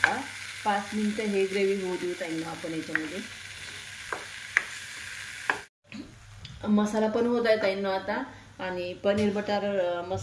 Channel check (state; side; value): identical; both; correlation 1.00